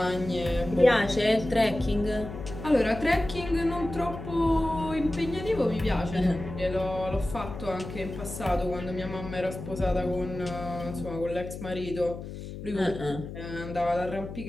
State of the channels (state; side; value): noise; left; hum, 10 dB below the sound